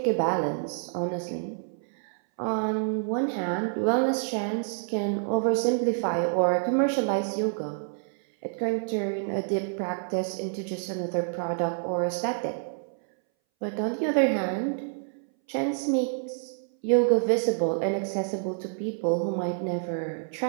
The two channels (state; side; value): silent; left; 59 dB below the other